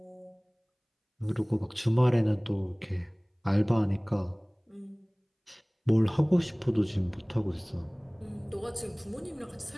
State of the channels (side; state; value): both; identical; correlation 1.00